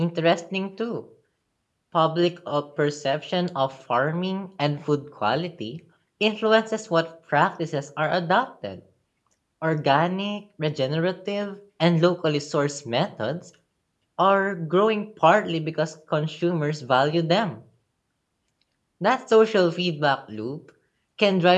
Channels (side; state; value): both; identical; correlation 1.00